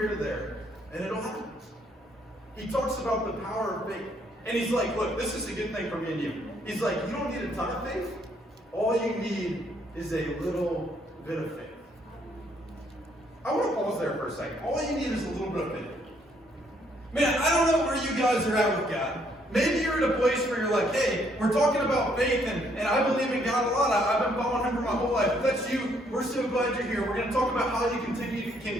to there, and it'll happen. He talks about the power of faith. And he's like, look, this is a good thing for me and you. He's like, you don't need a ton of faith. All you need is a little bit of faith. I want to pause there for a second. All you need is a little bit of faith. Man, I don't know where you guys are at with God. Maybe you're at a place where you're like, hey, we're talking about faith, and I believe in God a lot. I've been following him for my whole life. If that's you, we're so glad you're here. We're going to talk about how you can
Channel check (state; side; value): normal; both; correlation 0.69